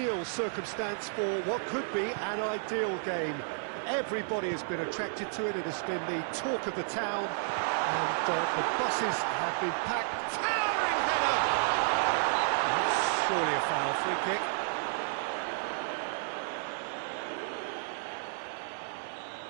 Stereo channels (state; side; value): silent; left; digital silence